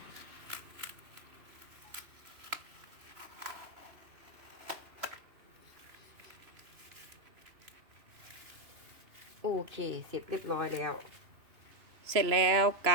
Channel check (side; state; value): left; late; 3.0 ms